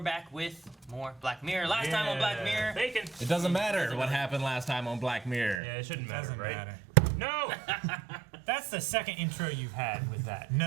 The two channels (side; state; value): left; drops out; at 5.6 s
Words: back with more Black Mirror. Last time on Black Mirror. Bacon. It doesn't matter what happened last time on Black Mirror. Yeah, it shouldn't matter, Doesn't right? matter. No! That's the second intro you've had with that.